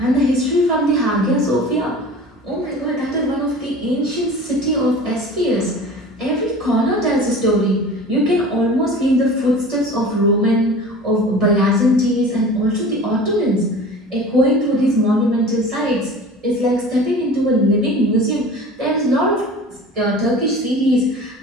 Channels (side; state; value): both; normal; correlation 0.39